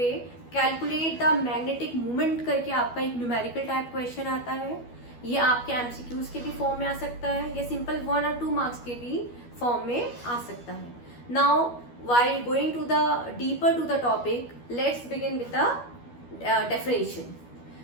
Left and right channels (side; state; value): right; late; 12 ms